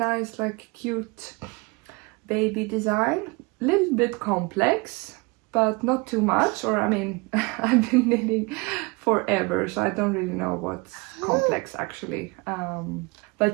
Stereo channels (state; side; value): quieter; left; 27.2 dB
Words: like cute baby design. A little bit complex, but not too much, or I mean, I've been knitting forever, so I don't really know what's complex actually.